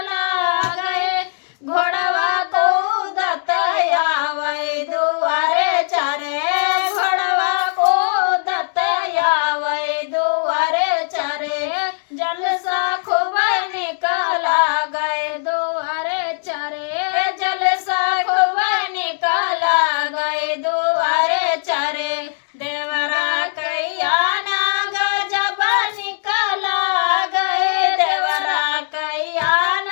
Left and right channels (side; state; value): right; silent; digital silence